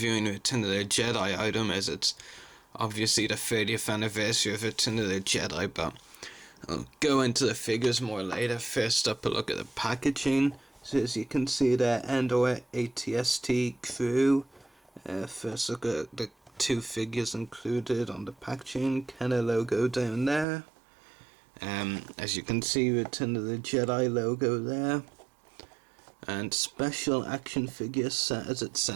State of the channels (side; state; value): left; drops out; at 20.5 s